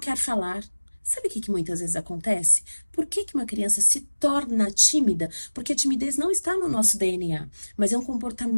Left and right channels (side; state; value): both; inverted; correlation -1.00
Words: falar. Sabe o que muitas vezes acontece? Por que uma criança se torna tímida? Porque a timidez não está no nosso DNA, mas é um